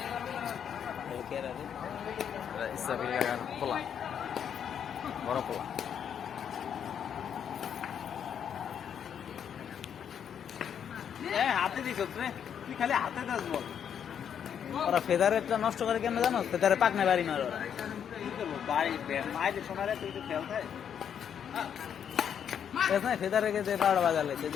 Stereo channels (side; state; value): right; quieter; 8.4 dB